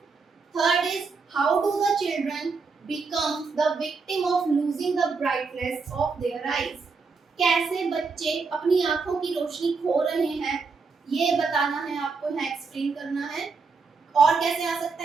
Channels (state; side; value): quieter; left; 4.7 dB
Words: Third is how do the children become the victim of losing the brightness of their eyes. कैसे बच्चे अपनी आंखों की रोशनी खो रहे हैं ये बताना है आपको, यहाँ एक्सप्लेन करना है। और कैसे आ सकता